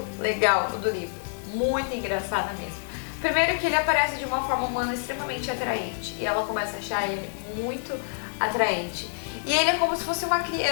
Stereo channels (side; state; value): right; silent; digital silence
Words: legal do livro, muito engraçada mesmo. Primeiro que ele aparece de uma forma humana extremamente atraente e ela começa a achar ele muito atraente. E ele é como se fosse uma